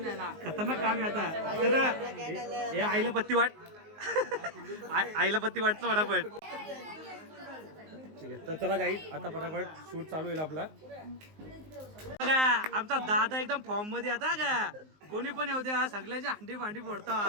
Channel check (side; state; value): left; late; 19 ms